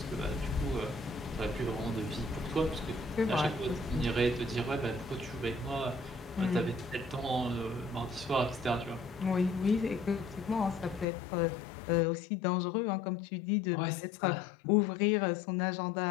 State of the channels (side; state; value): right; drops out; at 11.1 s